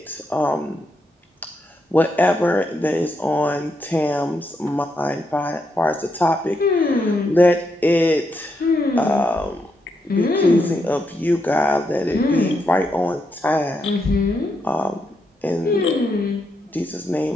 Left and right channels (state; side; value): normal; both; correlation 0.81